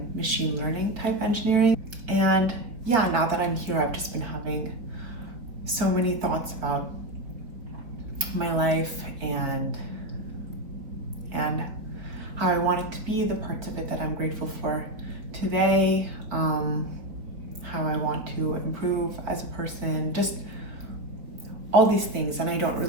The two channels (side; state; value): left; late; 4.1 ms